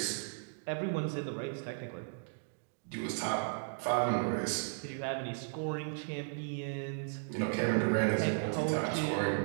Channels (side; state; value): left; silent; digital silence